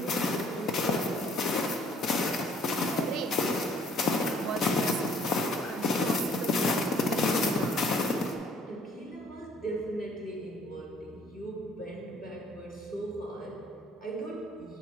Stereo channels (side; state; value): both; normal; correlation 0.60